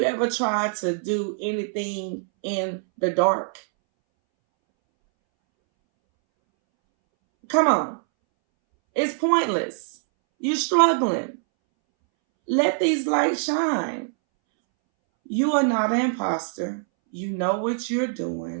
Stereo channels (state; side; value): silent; left; 63 dB below the other